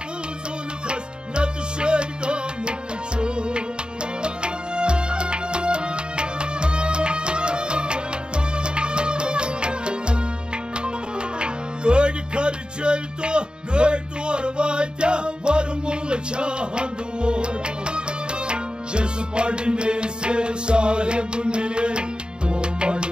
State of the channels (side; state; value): left; late; 0.049 ms